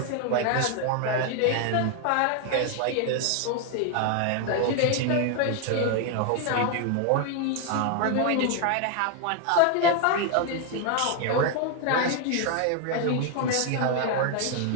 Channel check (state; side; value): different; both; correlation 0.01